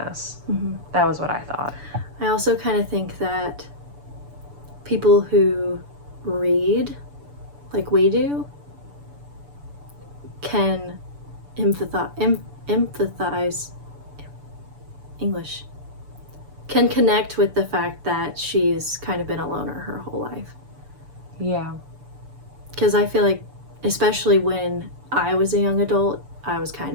Mm-hmm. That was what I thought. I also kind of think that people who read like we do can empathize English, can connect with the fact that she's kind of been a loner her whole life. Yeah. Because I feel like, especially when I was a young adult, I was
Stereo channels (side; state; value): left; late; 6.9 ms